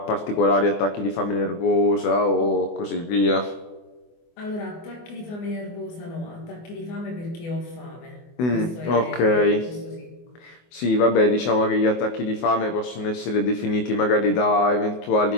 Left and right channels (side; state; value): right; late; 24 ms